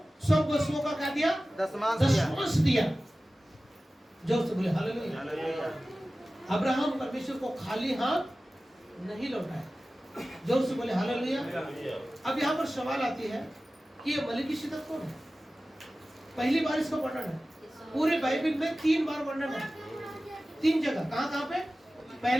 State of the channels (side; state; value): both; normal; correlation 0.96